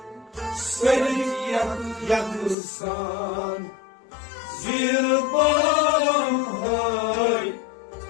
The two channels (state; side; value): drops out; right; at 2.6 s